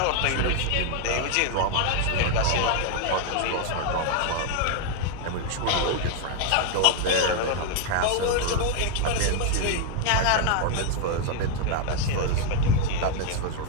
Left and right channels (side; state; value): both; different; correlation 0.01